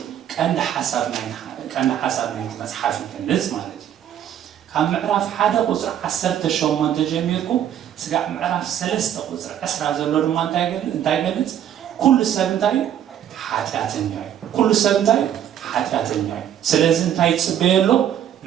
ቀንዲ ሓሳብ ናይቲ መፅሓፍ ይገልጽ ማለት እዩ። ካብ ምዕራፍ 1 ቁፅሪ 18 ጀሚርኩም ስጋዕ ምዕራፍ 3 ቁፅሪ 20 ዘሎ ድማ እንታይ ይገልጽ? ኩሉ ሰብ እንታይ ሓጢአተኛ እዩ። ኩሉ ሰብ እንታይ ሓጢአተኛ እዩ። ስለዚ እንታይ ይጽበየሎ?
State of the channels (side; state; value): left; quieter; 10.3 dB